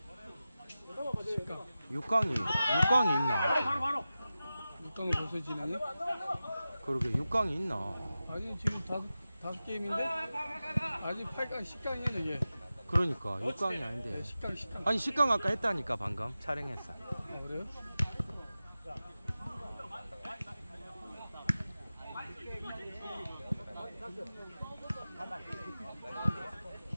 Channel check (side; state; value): both; inverted; correlation -0.94